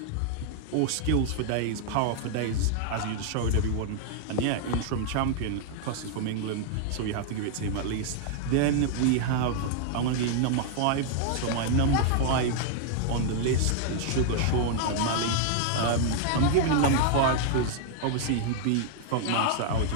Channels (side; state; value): both; different; correlation 0.00